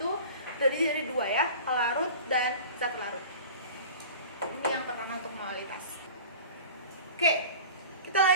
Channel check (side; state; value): both; inverted; correlation -0.39